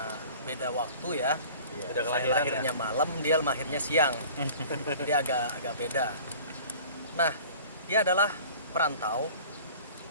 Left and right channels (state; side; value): inverted; both; correlation -0.44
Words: beda waktu ya. Beda Saya kelahiran lahirnya malam, dia lahirnya siang. Jadi agak beda. Nah, dia adalah perantau